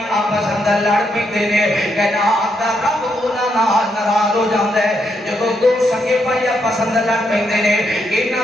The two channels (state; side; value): normal; both; correlation 0.79